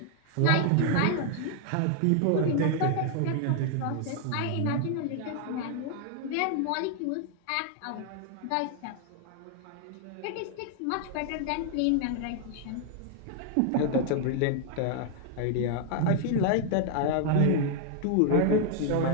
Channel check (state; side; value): different; both; correlation 0.00